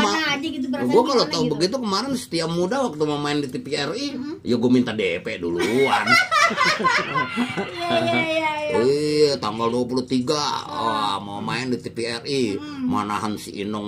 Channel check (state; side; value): identical; both; correlation 1.00